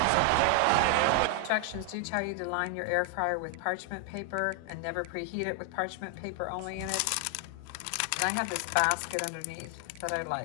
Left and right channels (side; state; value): both; different; correlation 0.00